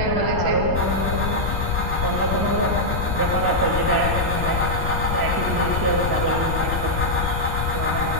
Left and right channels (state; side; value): noise; left; rumble, 1 dB below the sound